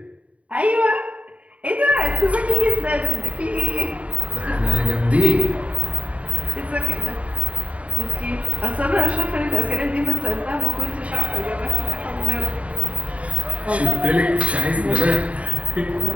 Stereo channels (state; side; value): late; left; 0.065 ms